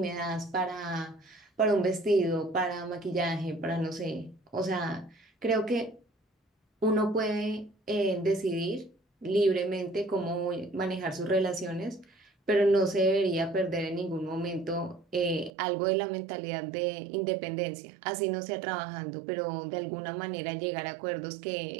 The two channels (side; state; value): left; drops out; at 15.5 s